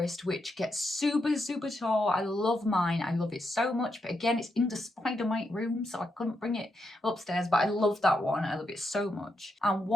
which gets super, super tall. I love mine. I love it so much. But again, it's in the spider mite room, so I couldn't bring it upstairs. But I love that one. I love it so much. And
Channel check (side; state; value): both; normal; correlation 0.83